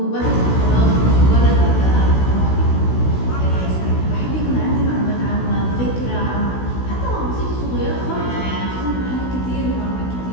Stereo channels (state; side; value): late; right; 16 ms